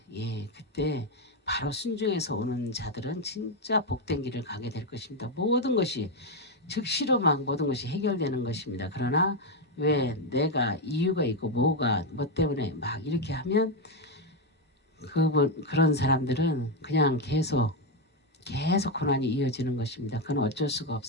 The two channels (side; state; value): both; normal; correlation 0.05